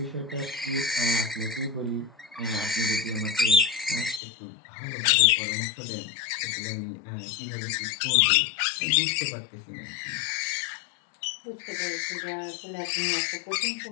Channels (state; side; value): drops out; right; at 4.2 s